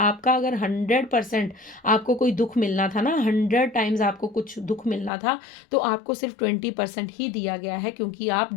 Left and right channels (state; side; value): drops out; right; at 5.1 s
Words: अगर 100% आपको कोई दुख मिलना था ना, 100 टाइम्स आपको कुछ दुख मिलना था, तो आपको सिर्फ 20% ही दिया गया है, क्योंकि आप